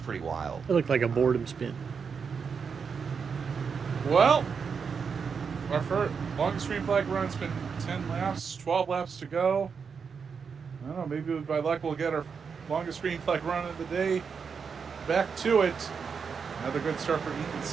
pretty wild. It looked like a boredom spin. Well, our first longest green flag run's been 10 laps, 12 laps to go. I don't know, maybe by luck we'll get our longest green flag run of the day. Back to it. Another good start for Ethan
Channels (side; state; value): left; quieter; 6.0 dB